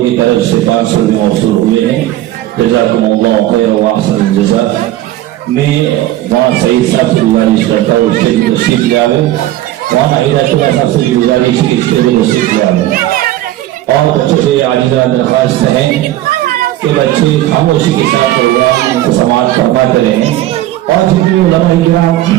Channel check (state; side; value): quieter; left; 14.6 dB